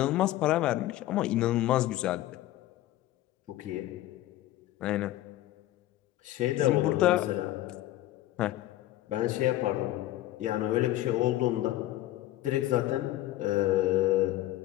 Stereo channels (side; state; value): right; quieter; 15.1 dB